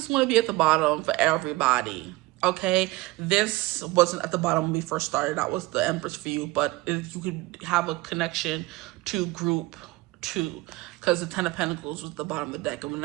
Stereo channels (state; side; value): quieter; left; 20.3 dB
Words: going to be at the bottom for everybody? Okay, this wasn't at the bottom when we first started. That was the Empress for you, but you could have a connection to group 2 because the Ten of Pentacles was at the bottom of the deck. And